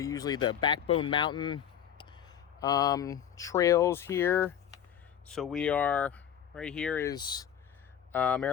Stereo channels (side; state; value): right; quieter; 9.5 dB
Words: the Backbone Mountain trails here. So we are, right here is